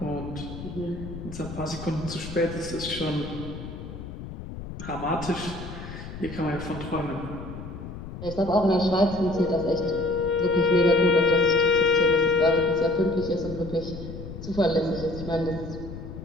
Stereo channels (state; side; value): noise; left; rumble, 11 dB below the sound